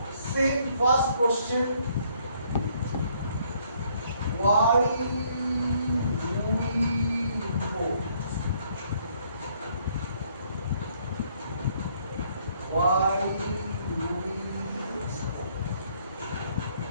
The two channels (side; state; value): both; inverted; correlation -0.66